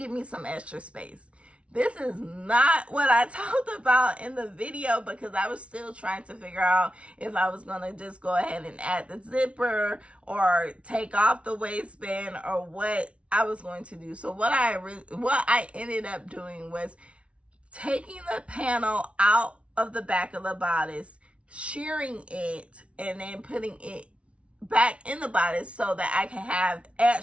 me some extra space. This is not what I talked about in the video, because I was still trying to figure out if I was going to just go ahead and add the zipper or take off the waistband or what I was going to do. So what I ended up doing was taking the panel out of the back of the bodice, shearing it, and then putting it back in the bodice so that I can have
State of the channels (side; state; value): left; late; 0.061 ms